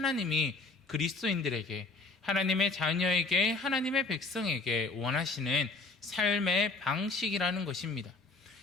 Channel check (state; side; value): quieter; right; 3.6 dB